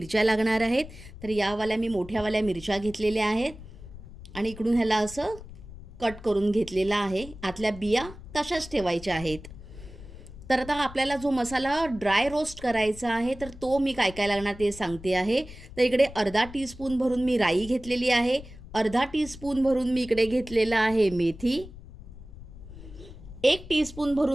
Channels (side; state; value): left; noise; rumble, 15 dB below the sound